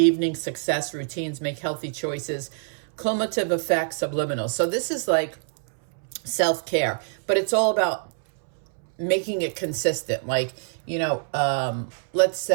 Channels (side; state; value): left; silent; 62 dB below the other